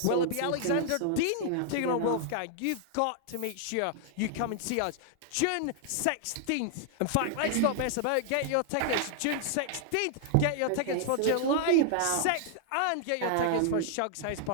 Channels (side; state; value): both; different; correlation 0.00